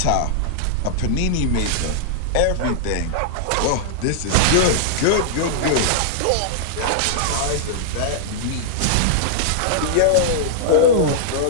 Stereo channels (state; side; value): different; both; correlation -0.01